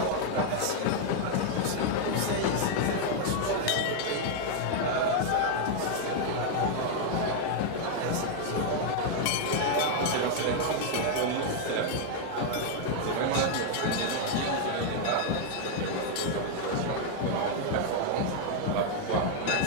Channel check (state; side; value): different; both; correlation 0.00